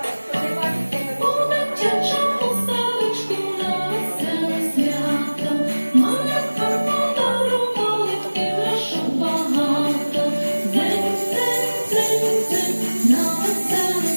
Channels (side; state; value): both; inverted; correlation -1.00